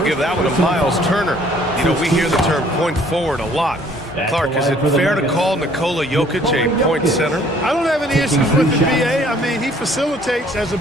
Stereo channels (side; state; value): both; normal; correlation 0.59